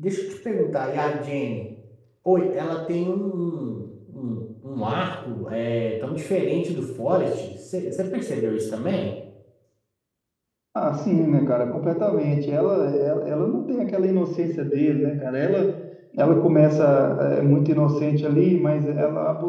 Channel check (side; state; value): both; identical; correlation 1.00